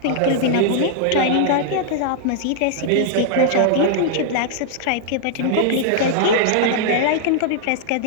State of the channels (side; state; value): both; different; correlation -0.01